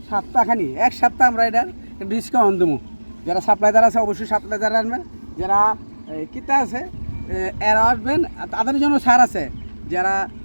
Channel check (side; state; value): both; inverted; correlation -1.00